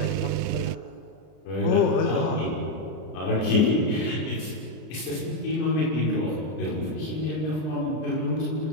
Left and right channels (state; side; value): late; right; 32 ms